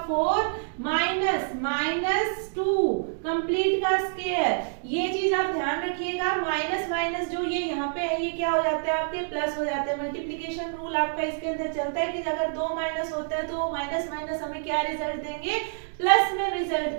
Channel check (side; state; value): left; silent; digital silence